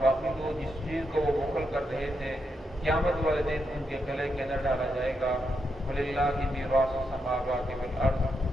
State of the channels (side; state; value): both; normal; correlation 0.83